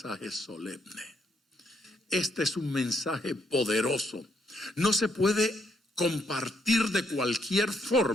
solemne. Este es un mensaje poderoso. No se puede compartir de cualquier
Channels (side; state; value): both; normal; correlation 0.74